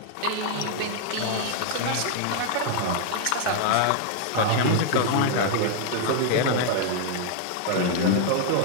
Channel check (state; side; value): different; both; correlation 0.00